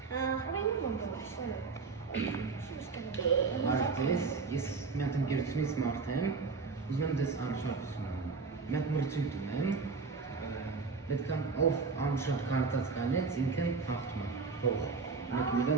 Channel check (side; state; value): left; quieter; 4.6 dB